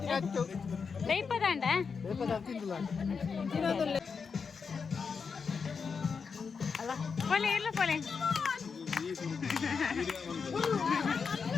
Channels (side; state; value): right; quieter; 5.6 dB